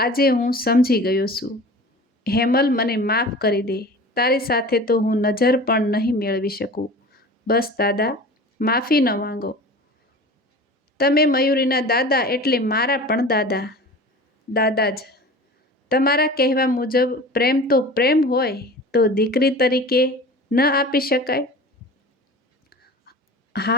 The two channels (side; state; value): both; normal; correlation 0.38